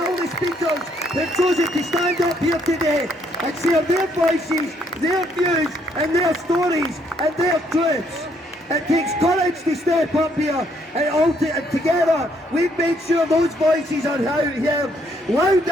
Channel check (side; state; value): both; normal; correlation 0.69